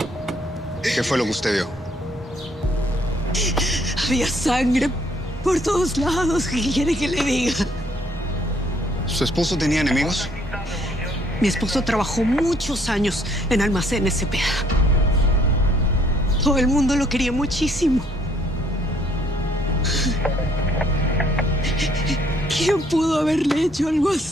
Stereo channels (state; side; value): normal; both; correlation 0.64